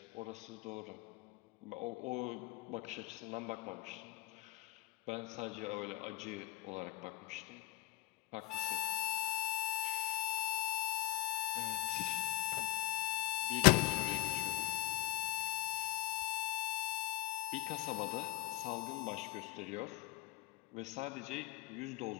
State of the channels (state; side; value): quieter; right; 17.8 dB